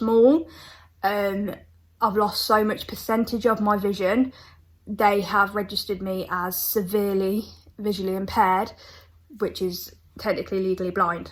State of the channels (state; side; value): identical; both; correlation 1.00